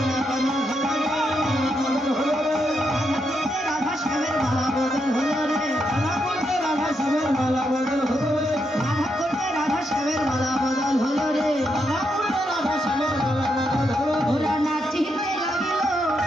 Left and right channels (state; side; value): normal; both; correlation 0.81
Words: রাধা শ্যামের মালা বদল হলো রে, রাধা করতে রাধা শ্যামের মালা বদল হলো রে, রাধা করতে রাধা শ্যামের মালা বদল হলো রে, রাধা করতে রাধা শ্যামের মালা বদল হলো, ওরা নাচিতে লাগিল,